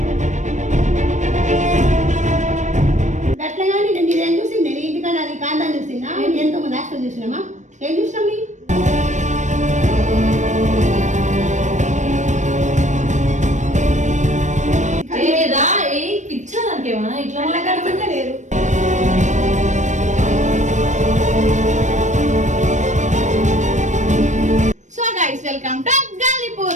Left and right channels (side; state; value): left; late; 0.35 ms